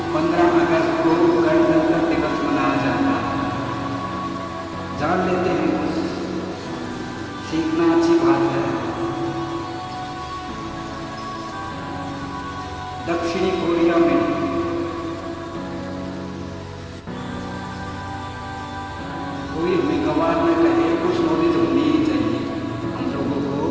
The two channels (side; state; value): both; identical; correlation 1.00